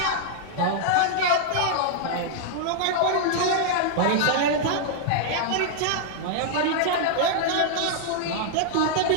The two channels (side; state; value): both; different; correlation -0.01